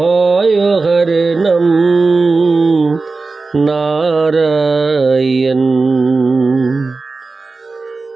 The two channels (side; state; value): left; quieter; 3.9 dB